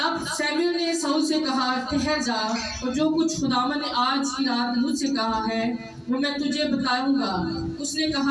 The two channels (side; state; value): both; identical; correlation 1.00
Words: सैमुएल ने शाऊल से कहा, ठहर जा, और जो कुछ खुदावंद ने आज की रात मुझसे कहा है वो मैं तुझे बताऊंगा। उसने